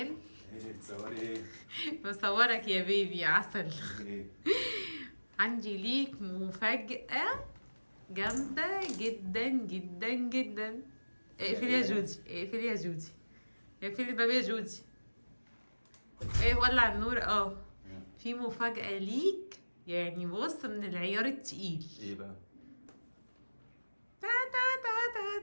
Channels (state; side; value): inverted; both; correlation -1.00